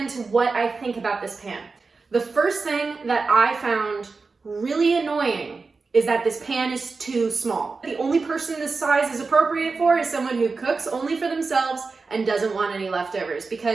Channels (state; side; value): quieter; left; 4.3 dB